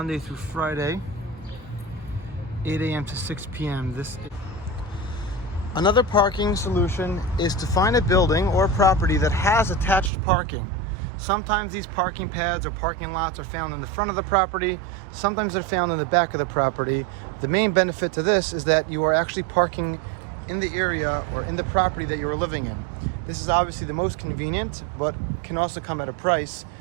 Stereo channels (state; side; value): drops out; left; at 10.1 s